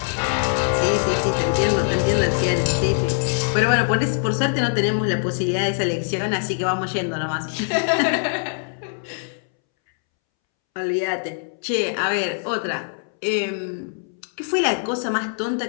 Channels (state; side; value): silent; right; 64 dB below the other